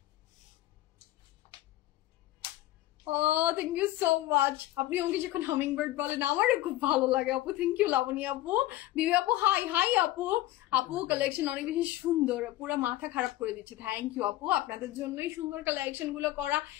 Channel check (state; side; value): quieter; right; 15.7 dB